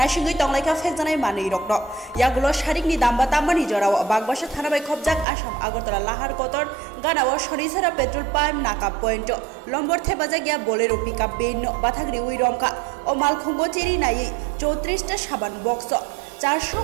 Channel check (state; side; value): drops out; left; at 5.2 s